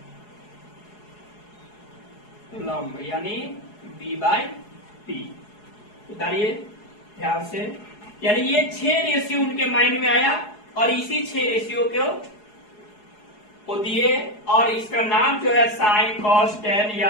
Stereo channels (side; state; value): right; late; 4.8 ms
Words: लंब, यानी B/P। उतारिए ध्यान से, यानी ये 6 रेशियो उनके माइंड में आया और इसी 6 रेशियो को दिए। और इसका नाम जो है साइन, कॉस, टेन